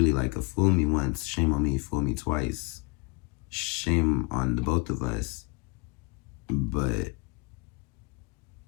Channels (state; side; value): quieter; right; 28.1 dB